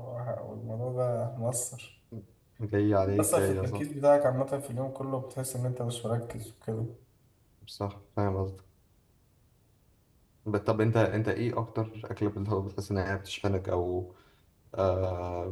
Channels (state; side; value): identical; both; correlation 1.00